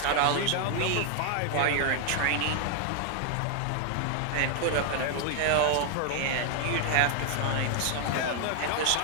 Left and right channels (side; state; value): both; different; correlation 0.00